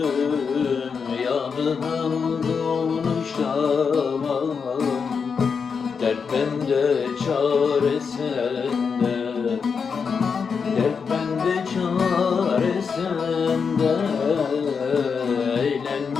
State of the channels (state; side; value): quieter; right; 5.8 dB